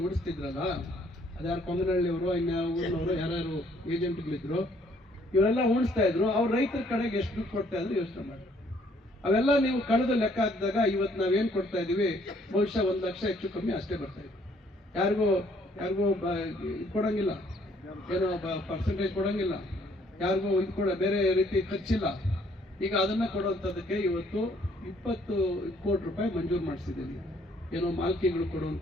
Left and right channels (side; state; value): both; normal; correlation 0.64